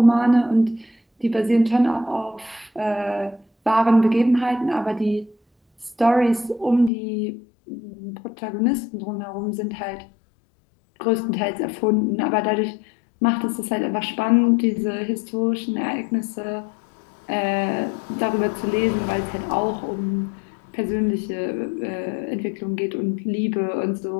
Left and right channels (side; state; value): right; drops out; at 6.9 s